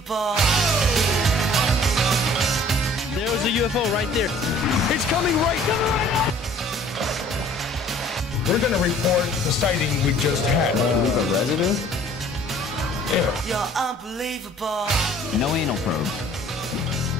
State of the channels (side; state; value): both; normal; correlation 0.53